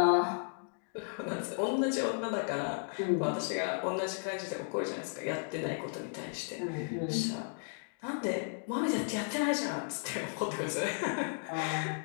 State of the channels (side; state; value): right; silent; 55 dB below the other